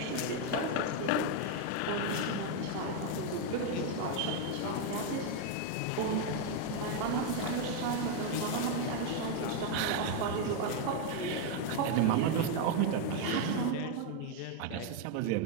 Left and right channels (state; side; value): different; both; correlation 0.01